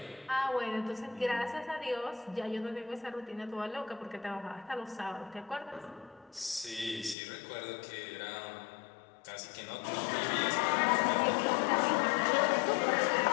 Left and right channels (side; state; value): right; drops out; at 7.2 s